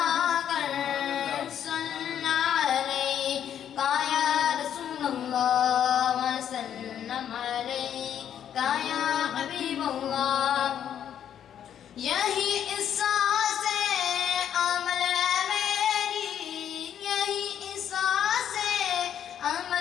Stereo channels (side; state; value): right; quieter; 9.5 dB